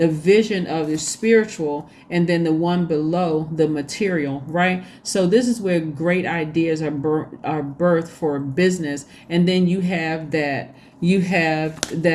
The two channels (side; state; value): both; identical; correlation 1.00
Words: vision of the spiritual, and then the one below, the material, right? So this is where great ideas are birthed for business. And then you have that